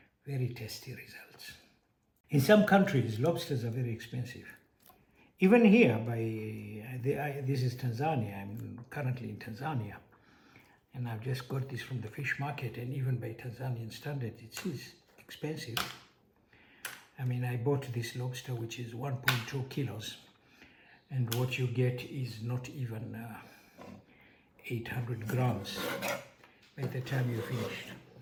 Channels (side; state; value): both; identical; correlation 1.00